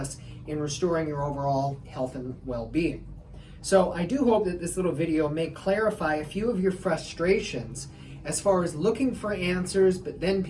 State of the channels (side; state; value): both; identical; correlation 1.00